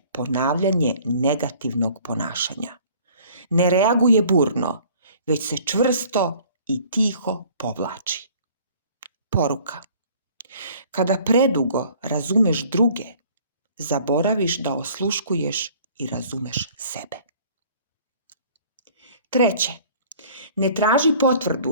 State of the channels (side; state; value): both; inverted; correlation -0.53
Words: ponavljanje negativnog ponašanja. Ne reaguje burno, već se čvrsto i tiho povlači. Poruka. Kada predugo razumeš druge, zaboraviš da osluškuješ i razumeš sebe. Treće, ne traži